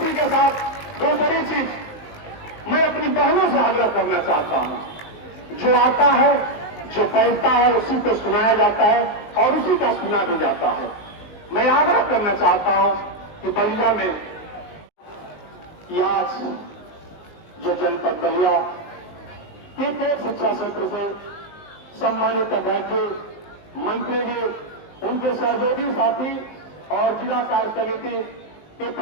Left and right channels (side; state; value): right; late; 19 ms